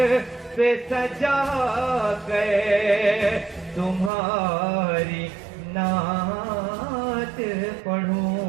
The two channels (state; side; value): drops out; left; at 4.1 s